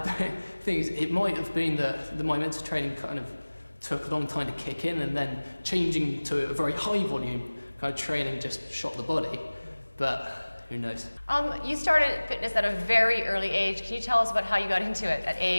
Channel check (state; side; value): inverted; both; correlation -1.00